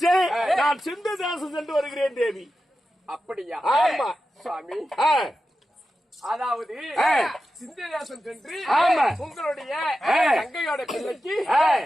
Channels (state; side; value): normal; both; correlation 0.92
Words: நான் சிந்துதாசன் சென்று வருகிறேன் தேவி. அப்படியா? ஆமா சுவாமி. அதாவது சிந்துதாசன் சென்று உங்களுடைய தங்கையோட பிள்ளைக்கு